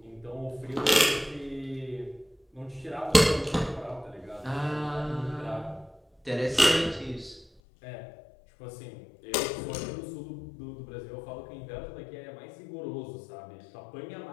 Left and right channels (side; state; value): right; drops out; at 7.5 s